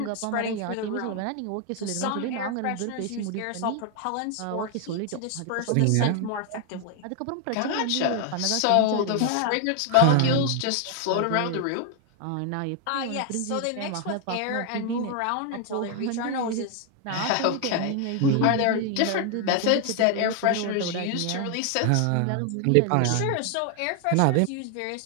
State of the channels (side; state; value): both; different; correlation 0.00